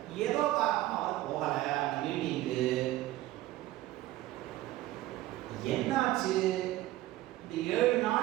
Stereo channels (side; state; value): left; quieter; 15.9 dB